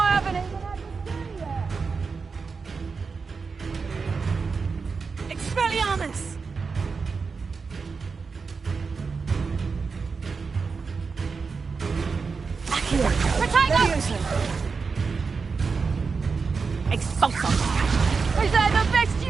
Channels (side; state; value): left; quieter; 4.9 dB